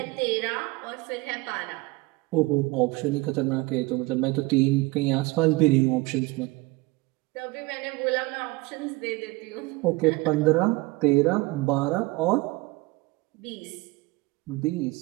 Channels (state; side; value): quieter; left; 21.8 dB